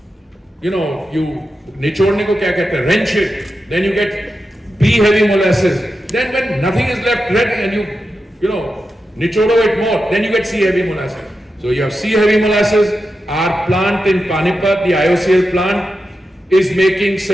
निचोड़ने को क्या कहते हैं, wrench it. Then you get B-heavy molasses. Then when nothing is left red and you nichodo it more, then you get C-heavy molasses. So you have C-heavy molasses. Our plant in Panipat, the IOCL plant, is making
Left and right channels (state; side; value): normal; both; correlation 0.89